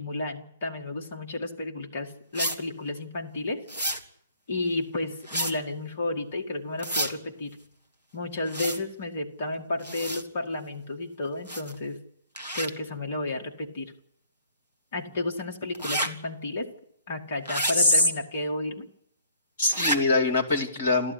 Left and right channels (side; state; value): both; inverted; correlation -0.60